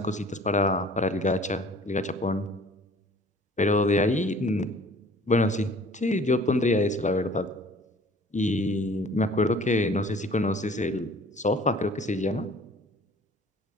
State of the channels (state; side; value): normal; both; correlation 0.50